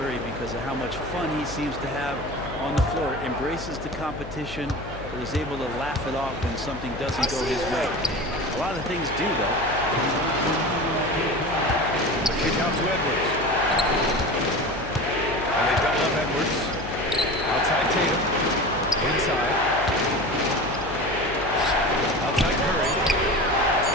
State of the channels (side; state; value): left; noise; hum, 12 dB below the sound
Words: because of how much fun he seems to have on the floor. Embraces the competition, but is able to laugh it off when something doesn't go his way. A lot of things do, though. The kick out to Edwards. And they double up Edwards. Outside Tatum. Inside. Outside Curry.